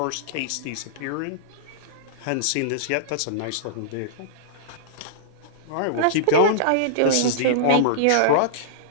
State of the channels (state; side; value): different; both; correlation -0.02